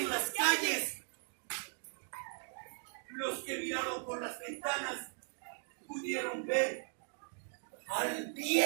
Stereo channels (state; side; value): silent; left; 52 dB below the other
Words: las calles. Los que miraron por las ventanas pudieron ver al